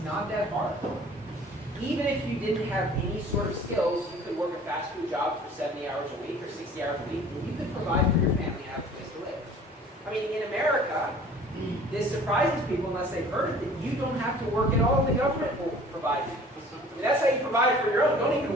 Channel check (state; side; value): normal; both; correlation 0.48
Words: not that hard. Even if you didn't have any sort of skills, you could work a fast food job for 70 hours a week or 60 hours a week, and you could provide for your family and have a place to live. I mean, in America, this surprises people unless they've heard it, that you don't have to work at all. The government will provide you. And that's how you provide for your own. Don't even